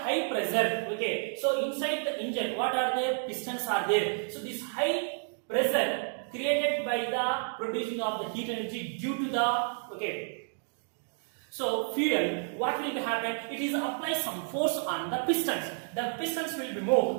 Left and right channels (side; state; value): left; silent; 57 dB below the other